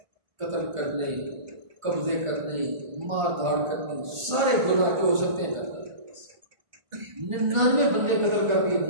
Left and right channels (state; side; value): late; left; 1.5 ms